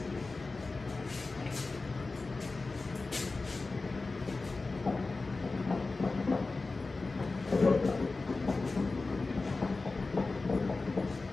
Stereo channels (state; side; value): quieter; right; 3.6 dB